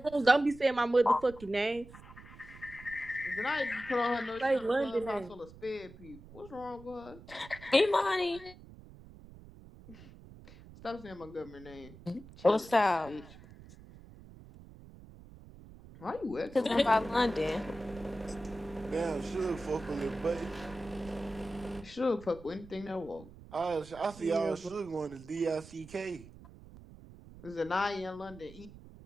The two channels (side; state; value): right; noise; rumble, 19 dB below the sound